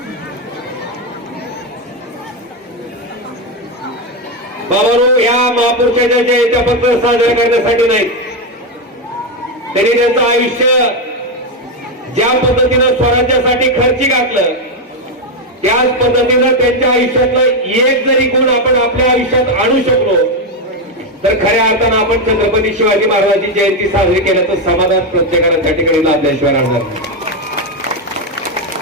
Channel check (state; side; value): normal; both; correlation 0.06